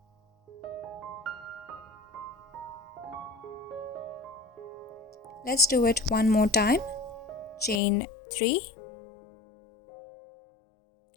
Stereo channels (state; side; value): drops out; right; at 7.8 s